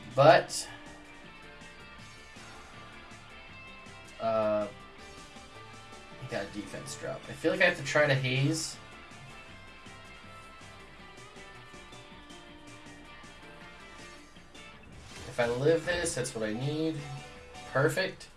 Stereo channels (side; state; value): both; identical; correlation 1.00